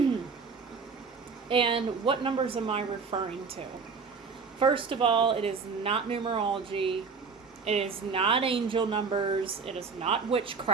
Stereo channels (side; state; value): left; quieter; 5.2 dB